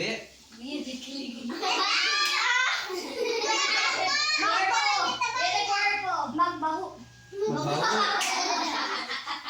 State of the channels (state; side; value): identical; both; correlation 1.00